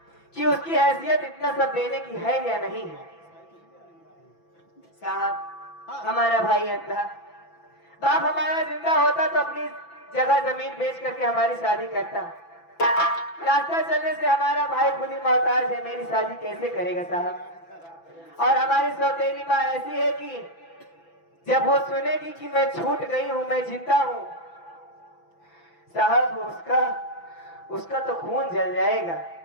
कि उसकी हैसियत इतना सब देने की है या नहीं है। साहब, हमारा भाई अंधा, बाप हमारा जिंदा होता तो अपनी जगह जमीन बेच करके हमारी शादी करता। रास्ता चलने से हमारा भाई खुद ही मोहताज है, मेरी शादी कैसे करेगा साहब? और हमारी सौतेली माँ ऐसी है कि जब वो सुनेगी कि मैं छूट गई हूँ, मैं जिंदा हूँ साहब, उसका तो खून जल जाएगा।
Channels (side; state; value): right; late; 6.0 ms